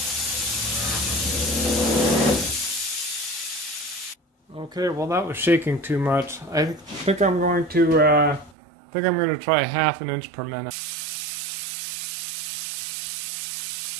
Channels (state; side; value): drops out; left; at 8.6 s